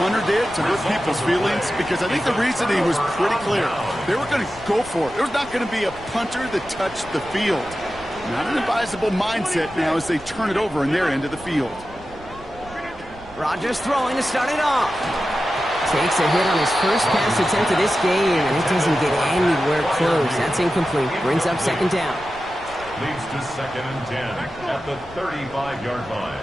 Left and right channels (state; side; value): noise; right; rumble, 20 dB below the sound